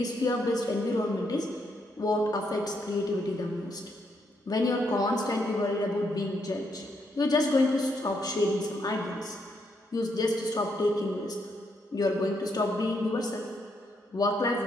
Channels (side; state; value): both; normal; correlation 0.77